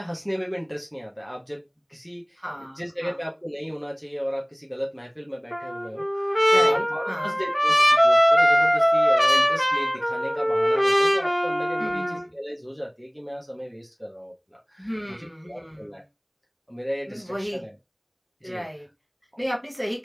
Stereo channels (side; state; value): both; identical; correlation 1.00